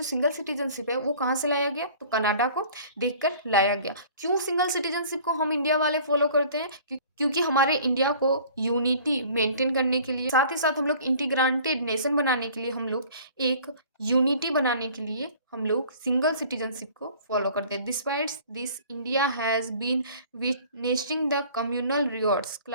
सिंगल सिटीजनशिप है वो कहाँ से लाया गया? तो कनाडा को देखकर लाया गया। क्यों सिंगल सिटीजनशिप को हम इंडिया वाले फॉलो करते हैं? क्योंकि हमारे इंडिया को यूनिटी मेंटेन करने के लिए, साथ ही साथ हम लोग इंटीग्रेटेड नेशन बनाने के लिए, हम लोग एक यूनिटी बनाने के लिए हम लोग सिंगल सिटीजनशिप को फॉलो करते हैं। Despite this India has been witnessing the communal rewards,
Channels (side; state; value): both; inverted; correlation -0.49